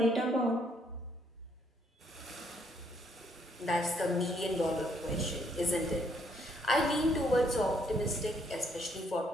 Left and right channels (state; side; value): normal; both; correlation 0.69